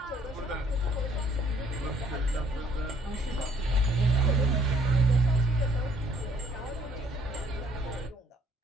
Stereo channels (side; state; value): both; normal; correlation 0.62